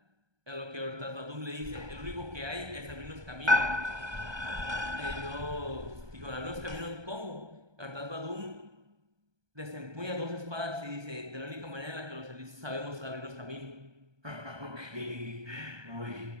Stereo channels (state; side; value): late; left; 1.2 ms